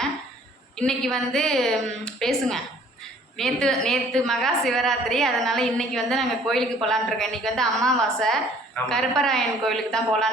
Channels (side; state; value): both; normal; correlation 0.56